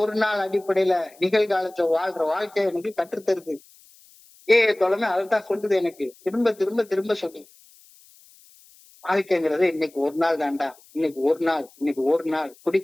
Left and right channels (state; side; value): noise; left; hiss, 27 dB below the sound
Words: நாள் அடிப்படையில நிகழ்காலத்துல வாழ்ற வாழ்க்கை எனக்கு கற்றுத்தருது. தொலைமை அதைத்தான் சொல்லுது, எனக்கு திரும்ப திரும்ப திரும்ப சொல்லுது. வாழ்க்கைங்கிறது இன்னைக்கு ஒரு நாள் தாண்டா, இன்னைக்கு ஒரு நாள்